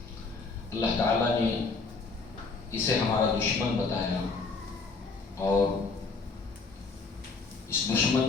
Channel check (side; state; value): right; quieter; 4.2 dB